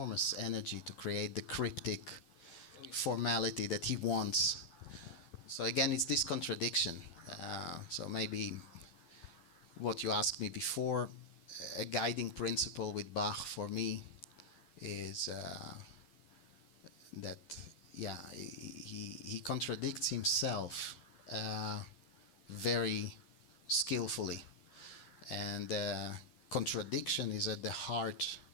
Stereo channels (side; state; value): right; late; 12 ms